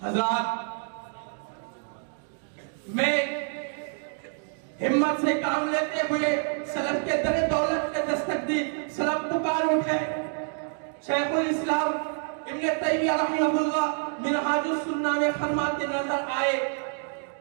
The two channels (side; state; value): left; silent; 58 dB below the other